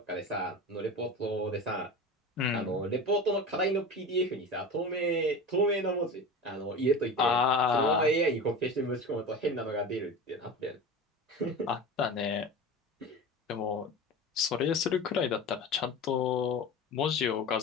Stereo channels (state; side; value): normal; both; correlation 0.31